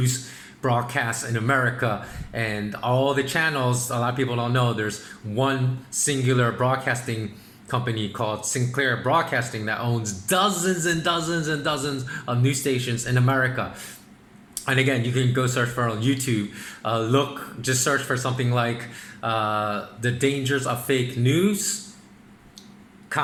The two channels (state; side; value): identical; both; correlation 1.00